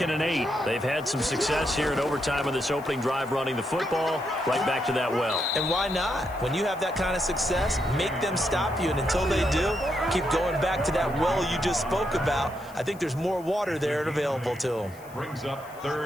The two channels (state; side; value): noise; left; hiss, 24 dB below the sound